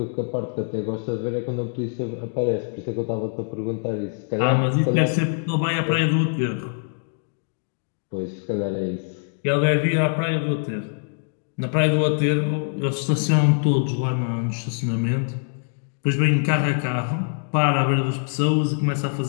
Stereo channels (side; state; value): right; silent; digital silence